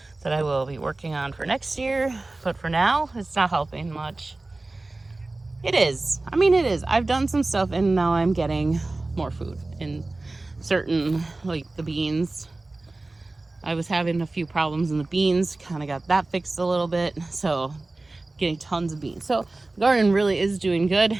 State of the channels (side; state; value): left; quieter; 3.1 dB